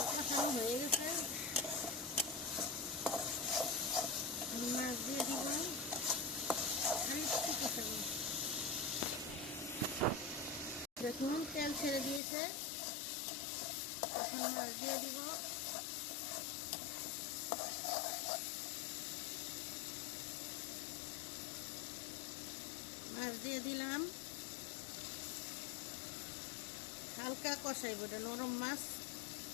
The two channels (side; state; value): right; drops out; at 12.2 s